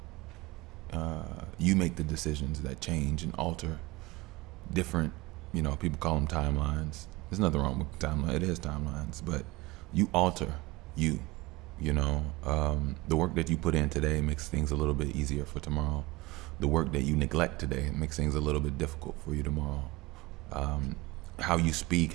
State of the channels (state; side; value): quieter; left; 21.2 dB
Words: You make the decisions that change and alter different, people call them timelines. There's nothing wrong with timeline. It is timelines, but you alter you. The work that you put in today makes things a little bit easier for tomorrow. The work that you neglect today makes things a little bit difficult for you tomorrow. How you speak,